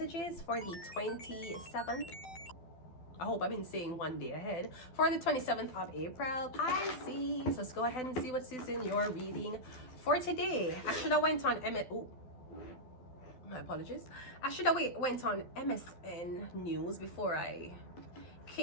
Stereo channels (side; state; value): right; late; 12 ms